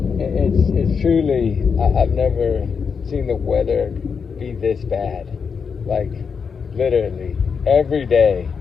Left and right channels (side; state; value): right; quieter; 6.0 dB